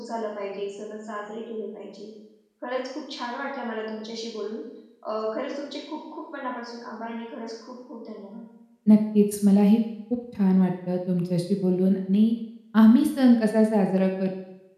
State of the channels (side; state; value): both; identical; correlation 1.00